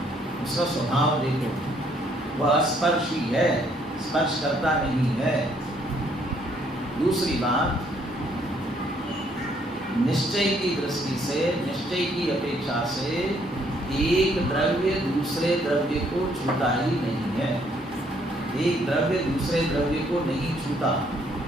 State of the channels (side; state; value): both; normal; correlation 0.67